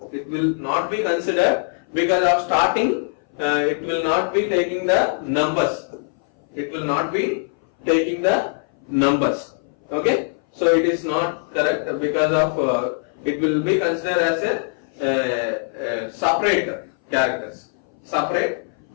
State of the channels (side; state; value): right; silent; 60 dB below the other